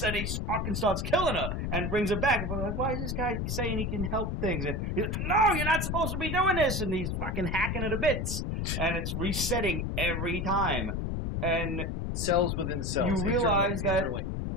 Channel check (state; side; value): noise; left; rumble, 1 dB below the sound